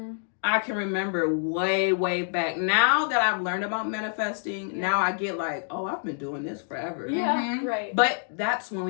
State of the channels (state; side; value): silent; right; digital silence